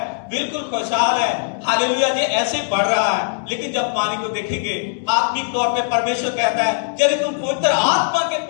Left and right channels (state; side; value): silent; right; 63 dB below the other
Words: बिल्कुल खुशहाल है, हालेलुया, ये ऐसे बढ़ रहा है। लेकिन जब पानी को देखेंगे आत्मिक तौर पे, परमेश्वर कहता है यदि तुम पवित्र आत्मा के